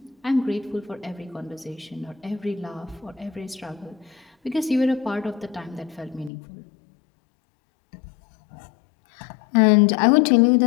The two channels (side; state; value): right; drops out; at 6.3 s